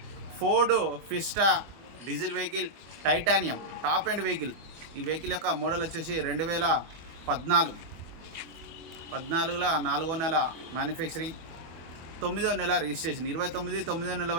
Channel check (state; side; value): late; left; 24 ms